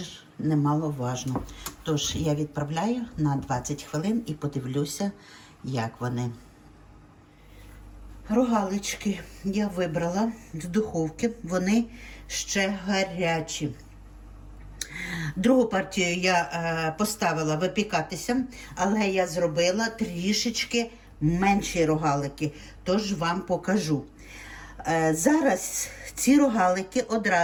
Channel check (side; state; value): both; identical; correlation 1.00